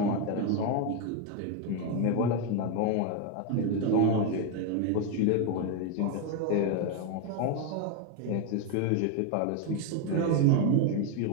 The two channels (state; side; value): different; both; correlation 0.01